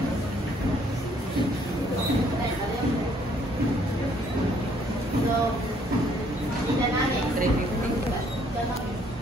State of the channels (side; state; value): both; normal; correlation 0.64